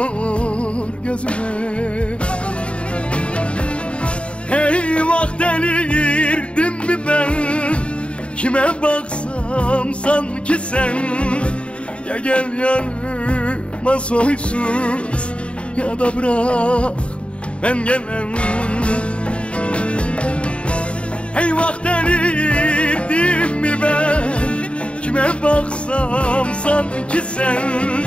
gözüme. Eyvah, delirdim mi ben? Kime baksam sanki sen. Ya gel yanıma soysuz, ya da bırak ben gelem. Eyvah, delirdim mi ben? Kime baksam sanki sen.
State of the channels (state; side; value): late; right; 0.059 ms